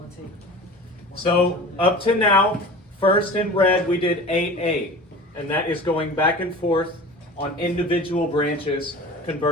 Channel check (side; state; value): both; normal; correlation 0.38